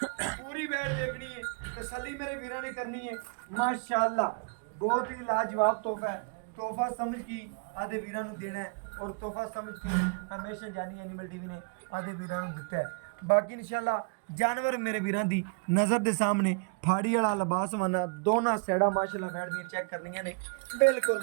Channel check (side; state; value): left; quieter; 37.6 dB